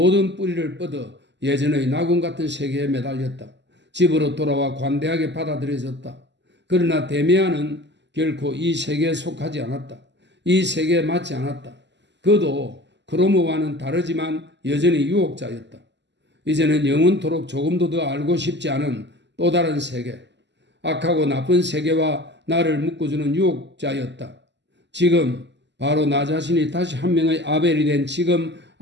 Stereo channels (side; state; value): left; late; 0.51 ms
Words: 뿌리를 뻗어 예전의 낙원 같은 세계에 매달렸다. 집으로 돌아와 관대하게 받아들여졌다. 그러나 데미안은 결코 이 세계에 속하지 않았다. 이 세계에 맞지 않았다. 그도 크로모와는 다르지만 여전히 유혹자였다. 이제는 영원토록 조금도 더 알고 싶지 않은 또 다른 세계, 악하고 나쁜 세계와 나를 묶어주는 유혹자였다. 지금 바로 나 자신이 다시 한 명의 아벨이 된 지금